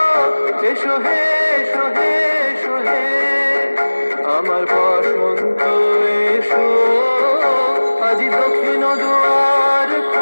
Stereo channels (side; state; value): both; inverted; correlation -1.00